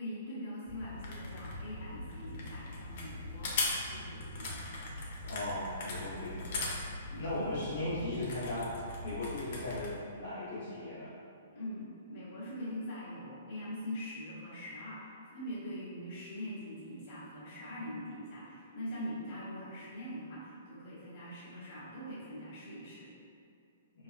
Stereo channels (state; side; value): inverted; both; correlation -0.51